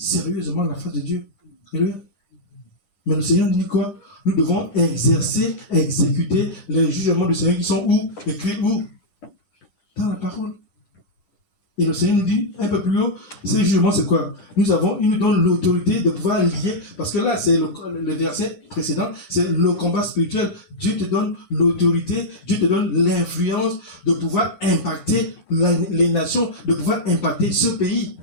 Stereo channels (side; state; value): right; late; 11 ms